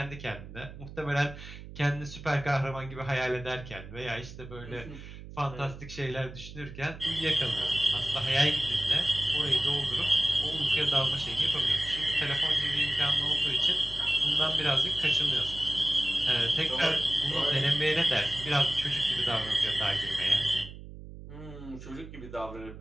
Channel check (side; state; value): right; noise; hum, 14 dB below the sound